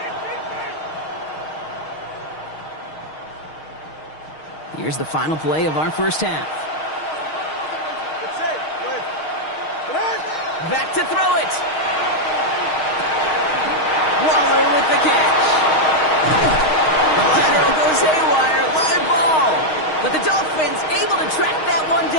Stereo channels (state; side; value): late; right; 6.4 ms